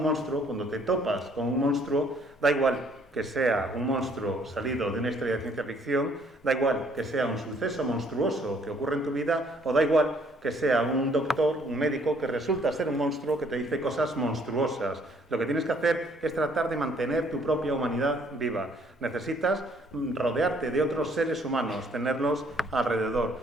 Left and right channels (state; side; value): normal; both; correlation 0.63